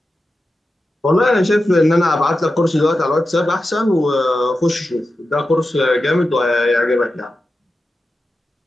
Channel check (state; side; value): normal; both; correlation 0.91